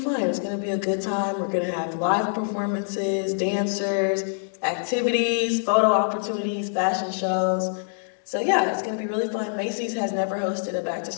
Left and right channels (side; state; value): right; silent; digital silence